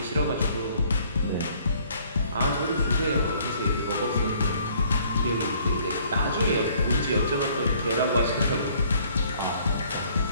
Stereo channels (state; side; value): inverted; both; correlation -0.59